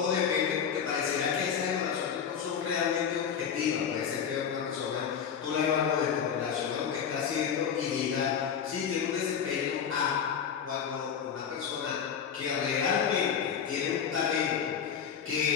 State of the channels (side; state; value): right; quieter; 7.5 dB